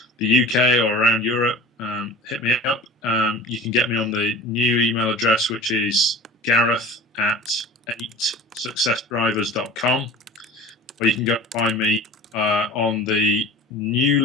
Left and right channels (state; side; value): normal; both; correlation 0.39